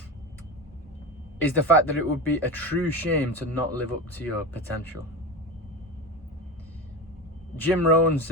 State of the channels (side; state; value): both; normal; correlation 0.24